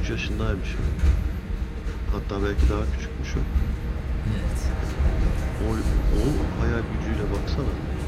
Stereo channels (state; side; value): identical; both; correlation 1.00